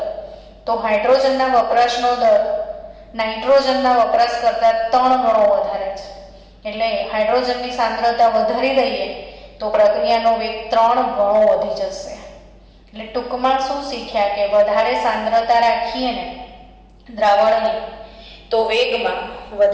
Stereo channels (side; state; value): both; identical; correlation 1.00